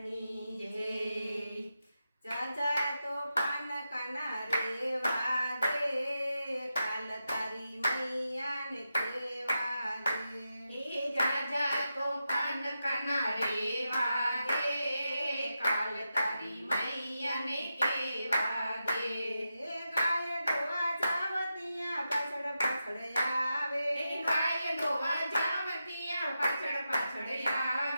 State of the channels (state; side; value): inverted; both; correlation -0.89